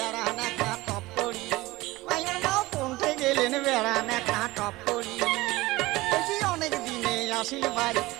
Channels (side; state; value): left; quieter; 19.9 dB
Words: একটা টপ করি মাইয়ের মাও কোনটে গেলেন বেড়ান একটা টপ করি অনেক দিনে আসিলি বাড়ি